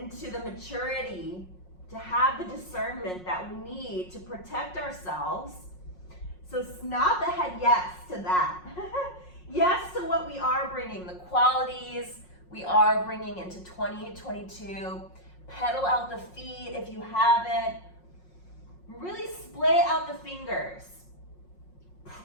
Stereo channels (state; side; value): late; right; 5.5 ms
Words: the maturity to have the discernment that we need to protect ourselves. So nod the head yes to that. Yes to what we are bringing, the qualities we are bringing into 2022. Pedal out the feet if you haven't. Really splay out the fingers.